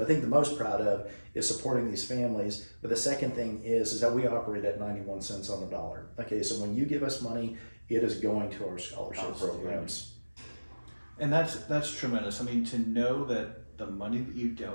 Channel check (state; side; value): inverted; both; correlation -1.00